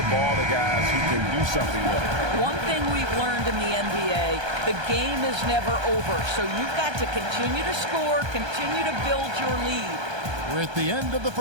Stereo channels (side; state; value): left; late; 1.3 ms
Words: ball to guys who can do something with it. One thing we've learned in the NBA, the game is never over. So you've got to continue to score, continue to build your lead. We're at the end of the